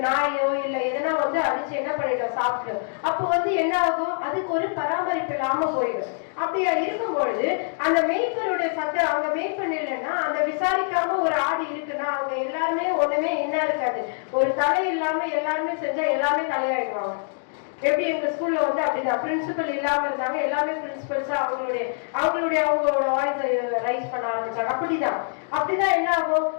நாயோ இல்ல எதனா அடிச்சு என்ன பண்ணிட்டோம் சாப்பிட்டோம். அப்போ என்ன ஆகும், அதுக்கு ஒரு பராமரிப்பு இல்லாம போயிடும். அப்படியா இருக்கும் பொழுது அந்த மேய்ப்பருடைய சத்தம், அவங்க மேய்ப்பன் இல்லைன்னா அந்த விசாரிக்காம ஒரு ஆடு இருக்குன்னா அவங்க எல்லாருமே ஒண்ணுமே என்ன இருக்காது, ஒரு தலை இல்லாம எல்லாருமே செஞ்சா எல்லாமே தலையாயிடுவாங்க. எப்படி எங்க ஸ்கூல்ல அப்படிதான் பிரின்சிபல் இல்லாம இருந்தாங்க, எல்லாமே பிரின்சிபல்ஸா அவங்களோட வாய்ஸ் ரைஸ் பண்ண ஆரம்பிச்சாங்க. அப்படிதான் என்ன ஆகும்,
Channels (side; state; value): right; silent; digital silence